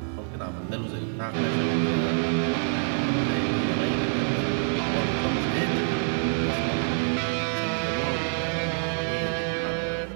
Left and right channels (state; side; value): silent; left; digital silence